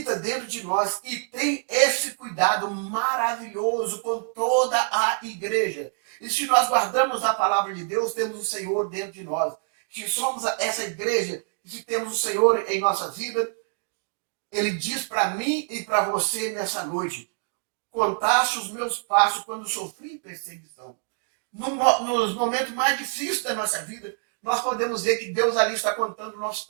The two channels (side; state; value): left; silent; 61 dB below the other